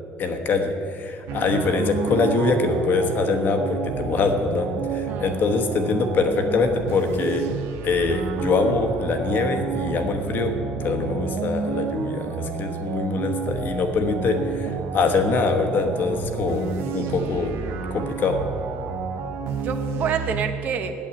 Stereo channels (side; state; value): both; normal; correlation 0.55